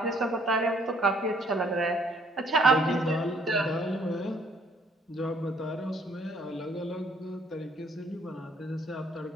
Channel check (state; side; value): normal; both; correlation 0.63